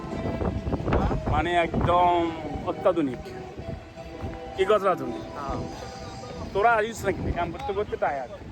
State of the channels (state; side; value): identical; both; correlation 1.00